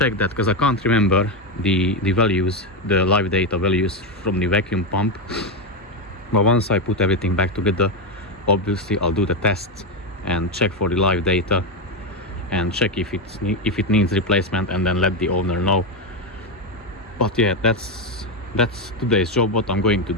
that because I can't remember the values, the live data values from the vacuum pump. But once I put everything back together, obviously I'll do the tests and check for the live data and check if it needs replacement, and then let the owner know. But yeah, that's today's job, what I'm going to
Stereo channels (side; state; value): both; normal; correlation 0.09